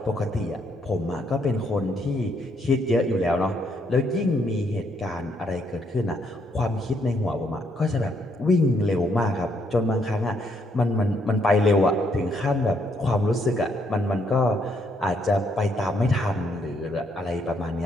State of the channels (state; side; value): normal; both; correlation 0.72